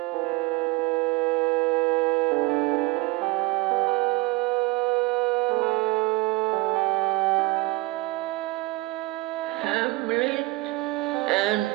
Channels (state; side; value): quieter; left; 21.2 dB